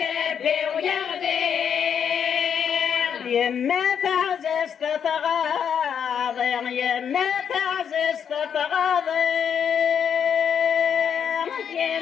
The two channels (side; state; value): right; quieter; 7.8 dB